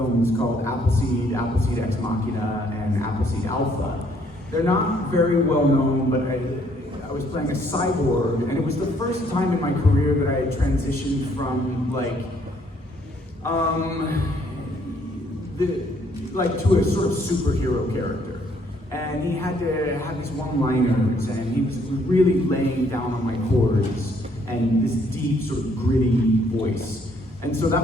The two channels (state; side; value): normal; both; correlation 0.66